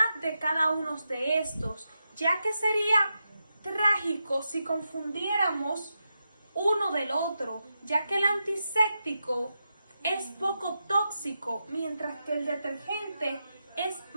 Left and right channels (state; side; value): inverted; both; correlation -0.87